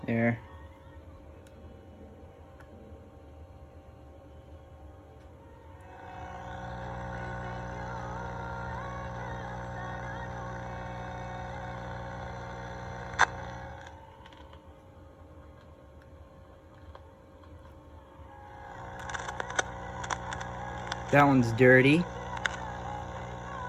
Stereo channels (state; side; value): identical; both; correlation 1.00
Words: There. That one's dirty.